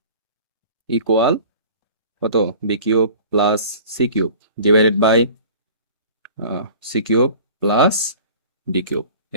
equal কত, b cube plus c cube divided by c cube plus d cube.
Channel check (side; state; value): both; inverted; correlation -0.43